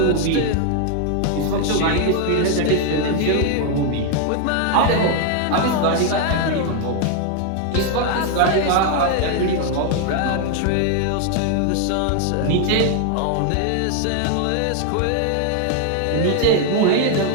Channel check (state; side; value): different; both; correlation 0.00